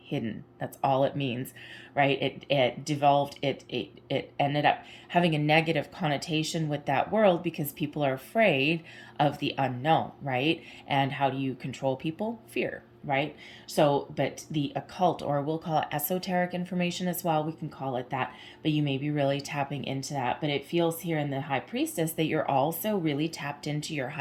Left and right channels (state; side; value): identical; both; correlation 1.00